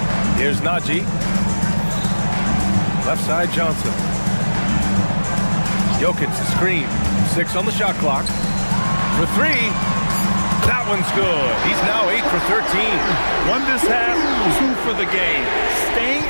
Here's Najee. Left side Johnson. Jokic the screen. 6 on the shot clock. For 3. That one's good. He's now 8 for 13. 1 this half, 2 for the game. Staying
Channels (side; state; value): both; inverted; correlation -1.00